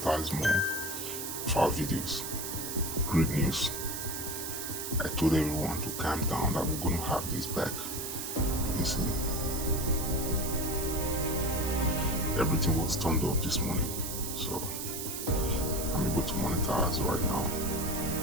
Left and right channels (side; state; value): right; noise; hiss, 5 dB below the sound